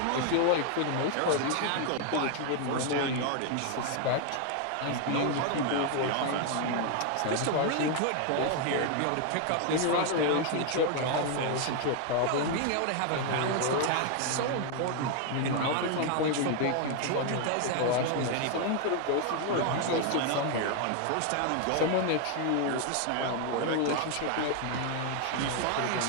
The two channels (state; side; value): different; both; correlation 0.01